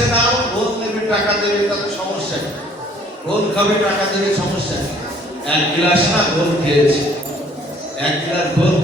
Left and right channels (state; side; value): normal; both; correlation 0.58